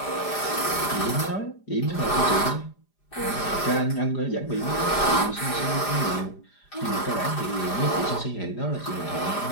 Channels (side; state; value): right; late; 4.9 ms